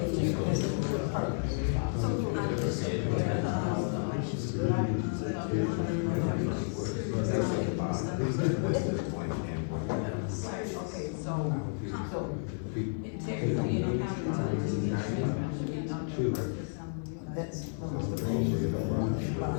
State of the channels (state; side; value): silent; right; 57 dB below the other